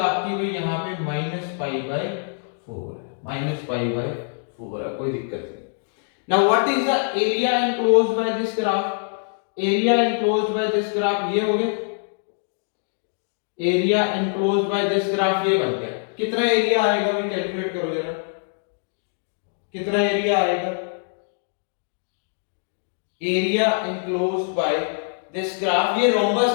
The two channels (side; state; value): right; silent; digital silence